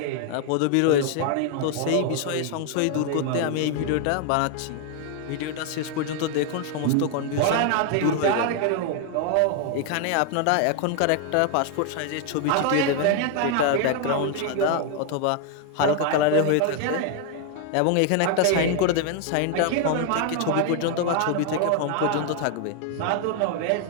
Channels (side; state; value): both; different; correlation 0.00